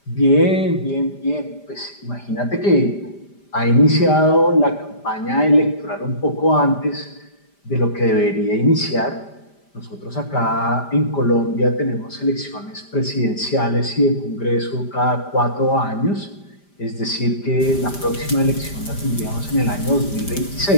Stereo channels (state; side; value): late; right; 5.0 ms